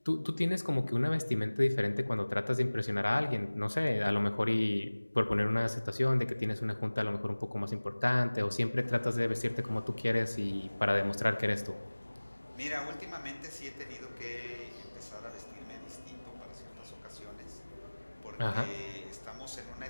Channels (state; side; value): inverted; both; correlation -1.00